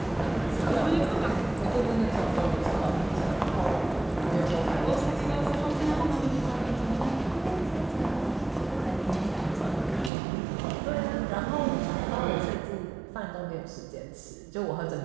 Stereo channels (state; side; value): drops out; left; at 10.1 s